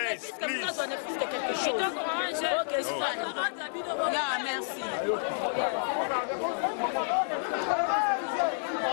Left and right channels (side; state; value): right; silent; digital silence